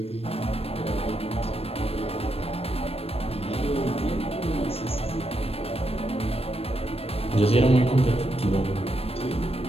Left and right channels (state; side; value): late; right; 0.28 ms